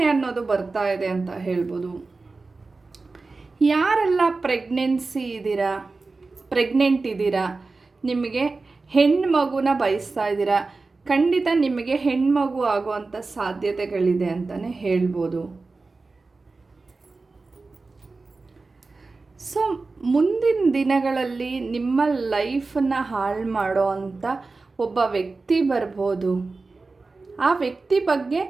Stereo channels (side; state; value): left; quieter; 3.8 dB